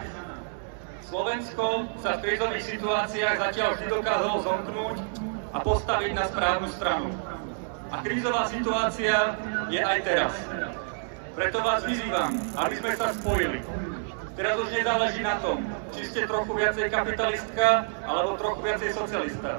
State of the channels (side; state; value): left; silent; digital silence